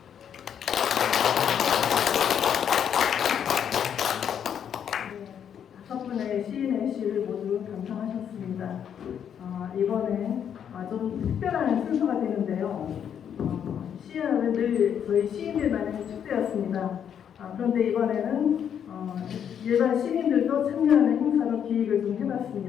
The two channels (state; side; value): quieter; right; 8.6 dB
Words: 다섯 분의 시인의 시를 모두 감상하셨습니다. 이번에 좀 특별한 순서가 되는데요. 시연은 늘 저희 시인들만의 축제였습니다. 그런데 이번에는 일반 시민들도 참여하는 행사로 기획을 좀